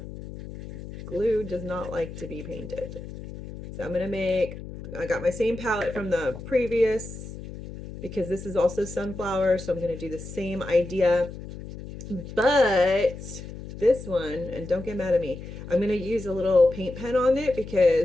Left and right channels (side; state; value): left; noise; hum, 12 dB below the sound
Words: Glue does not like to be painted. So I'm going to make, I got my same palette from the previous because this is also sunflower. So I'm going to do the same idea. But this one, and don't get mad at me, I'm going to use a little paint pen on it